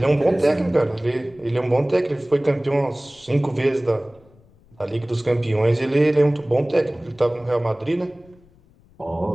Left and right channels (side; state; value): left; noise; rumble, 29 dB below the sound